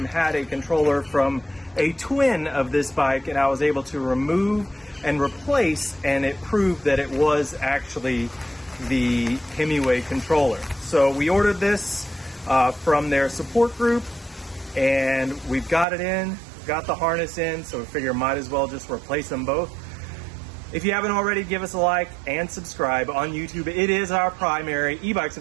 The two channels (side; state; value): left; drops out; at 15.9 s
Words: had a controller from a twin of this bike, and I was able to remove and replace, and it proved that it was actually the Himiway controller. So we ordered this from their support group, and we've got it in, got the harness in, so we figure might as well just replace them both. If you haven't already, give us a like and subscribe on YouTube. It is our primary, e-bikes